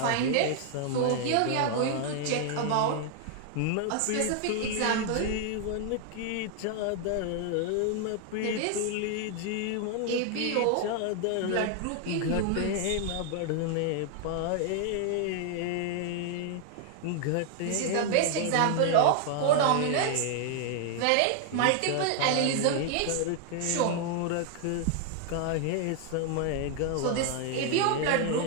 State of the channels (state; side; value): different; both; correlation 0.00